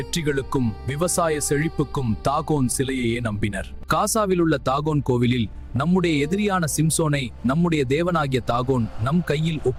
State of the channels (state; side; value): identical; both; correlation 1.00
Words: விவசாய செழிப்புக்கும் தாகோன் சிலையையே நம்பினர். காசாவில் உள்ள தாகோன் கோவிலில் நம்முடைய எதிரியான சிம்சோனை நம்முடைய தேவனாகிய தாகோன் நம் கையில்